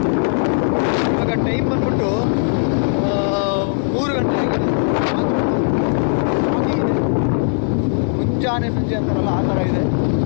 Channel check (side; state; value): right; silent; 58 dB below the other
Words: ಇವಾಗ ಟೈಮ್ ಬಂದ್ಬಿಟ್ಟು 3 ಗಂಟೆ ಆಗಿದೆ, ಆದ್ರೂ ಫುಲ್ಲು ಫಾಗಿ ಇದೆ. ಮುಂಜಾನೆ ಸಂಜೆ ಅಂತಾರಲ್ಲ, ಆ ಥರ ಇದೆ,